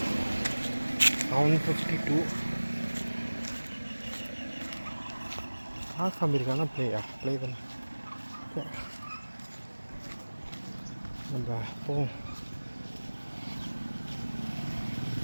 7:52. காமிருக்கானா ப்ளே தானே நம்ம போவோம்.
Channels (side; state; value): both; inverted; correlation -1.00